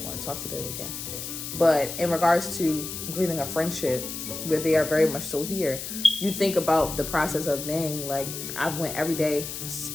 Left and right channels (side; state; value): left; noise; hiss, 7 dB below the sound